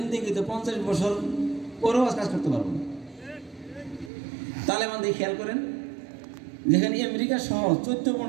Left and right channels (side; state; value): left; drops out; at 4.1 s